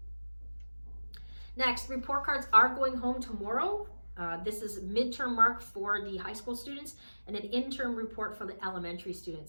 Next, report cards are going home tomorrow. This is midterm mark for the high school students and an interim report for the elementary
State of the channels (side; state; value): both; inverted; correlation -1.00